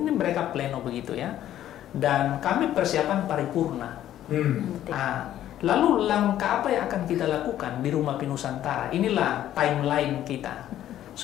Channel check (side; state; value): right; quieter; 12.1 dB